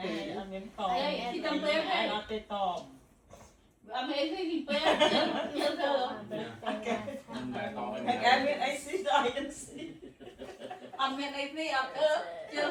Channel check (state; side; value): identical; both; correlation 1.00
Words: ăn miếng to. Đây, thì cầm bếp Ai đây. nó tê to. Ăn mấy cái gì bếp, nhớ thơ. Anh em biết anh xí rồi, anh xí. Ăn miếng này đi, ăn ơ,